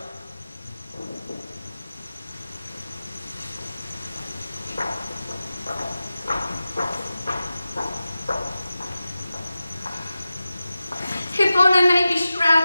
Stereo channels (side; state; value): both; inverted; correlation -0.95